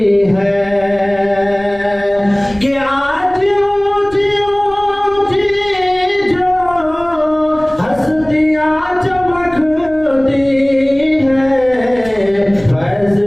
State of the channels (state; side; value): noise; left; rumble, 20 dB below the sound